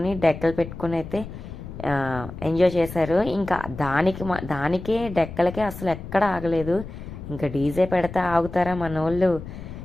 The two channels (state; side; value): noise; left; rumble, 11 dB below the sound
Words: డెక్కలు పెట్టుకుని అయితే ఎంజాయ్ చేశారు. ఇంకా దానికే డెక్కలకే అసలు ఎక్కడ ఆగలేదు. ఇంకా డీజే పెడితే ఆగుతారా మన వాళ్ళు.